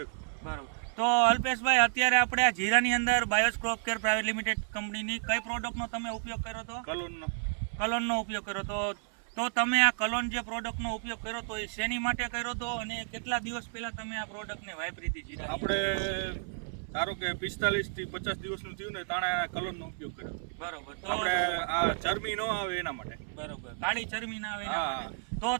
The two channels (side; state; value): left; silent; 57 dB below the other